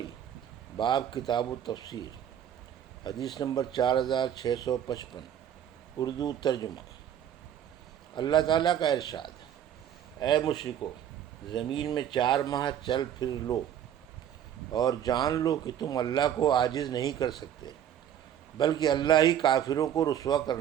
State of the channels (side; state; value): left; quieter; 10.0 dB